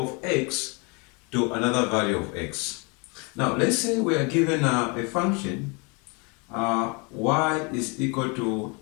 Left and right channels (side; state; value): right; quieter; 31.7 dB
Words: x to another value of x. Now, let's say we are given a function y is equal to